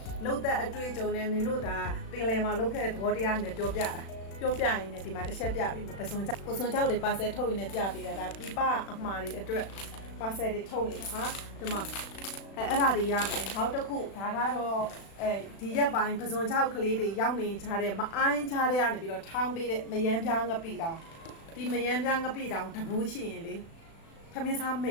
လှုပ်သက်အတွေ့အကြုံနဲ့မင်းတို့ဒါပင်လယ်မှာလှုပ်ခဲ့တဲ့သဘောတရားနဲ့ပြောပြရင်လည်းဒီမှာတစ်ချက်ပြပြီးပစုံကြောက်တွေပါဆယ်ထုတ်ရင်းနဲ့ပြပေးတာဒါပြပအမှားတွေအတွက်ပါဆယ်တွေထုတ်နေတာဟာဒီမှာအဲ့ဒါတွေရမယ်နောက်တစ်ခုဒါကတော့ဒီရက်ပိုင်းပစုံချောက်ကလေးတွေရောက်နေကြတဲ့မအိုင်းချတဲ့ကနေပြီးတော့ထောင်းပေးတဲ့မယမ်းပြားငပိတောင်ဒီမယမ်းပြားငပိတောင်တဘူးရှိရင်လေသမင်းစားမိ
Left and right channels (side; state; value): right; late; 36 ms